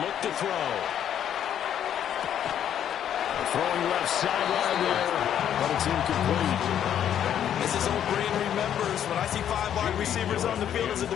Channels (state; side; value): quieter; right; 9.8 dB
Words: look to throw. Throwing left sideline there, but it's incomplete. As his old brain remembers, when I see 5 wide receivers on the field as a